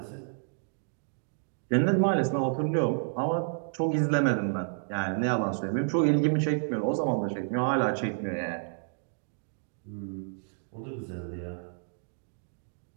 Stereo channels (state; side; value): silent; left; digital silence